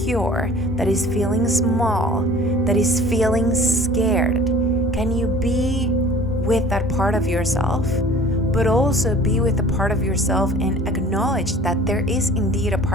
that is feeling small, that is feeling scared? Can you be with that part of yourself, but also be with the part of yourself and acknowledge that there is indeed a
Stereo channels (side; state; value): both; normal; correlation 0.48